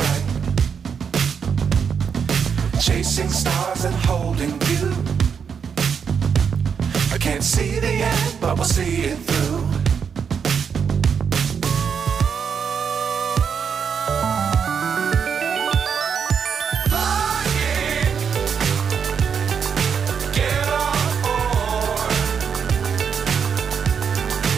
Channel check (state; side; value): quieter; left; 6.8 dB